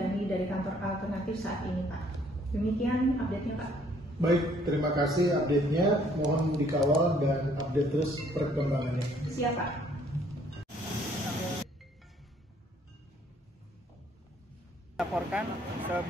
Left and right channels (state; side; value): normal; both; correlation 0.63